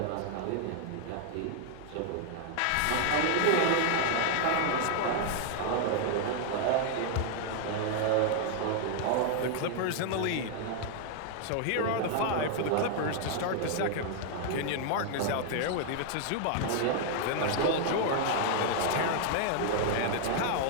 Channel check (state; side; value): different; both; correlation 0.00